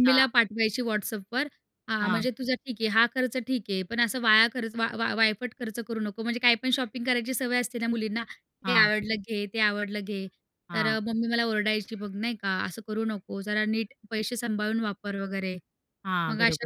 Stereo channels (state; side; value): identical; both; correlation 1.00